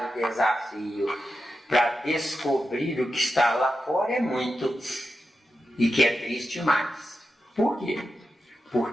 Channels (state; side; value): normal; both; correlation 0.89